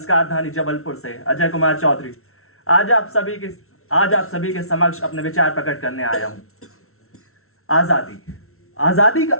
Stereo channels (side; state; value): right; late; 0.62 ms